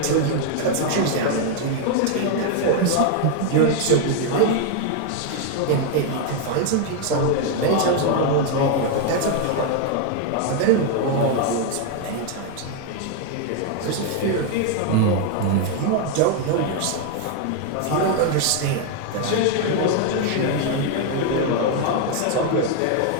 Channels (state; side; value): different; both; correlation 0.00